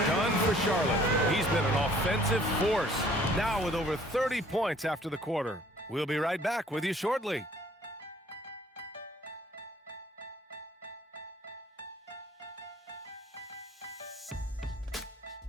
done for Charlotte. He's been an offensive force, now with over 30 points after the quarter. We'll be right back with you shortly.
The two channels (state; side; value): normal; both; correlation 0.57